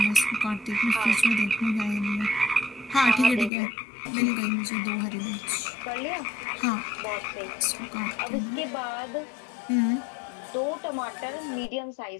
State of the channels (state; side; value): drops out; right; at 3.5 s